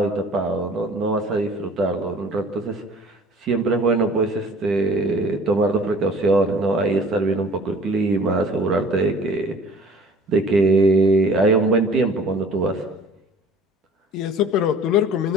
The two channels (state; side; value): normal; both; correlation 0.48